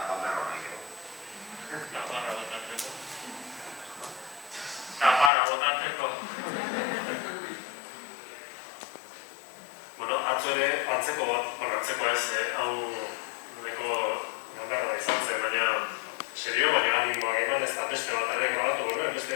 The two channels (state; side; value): drops out; right; at 5.3 s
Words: banberro nahi gero. Tapara botatzeko. Bueno, atzo ere, antzeko ez, hau noleko ganberra izan zen, baina serio, baina animoak eman ez da beste bat ere grabatu genuen, beste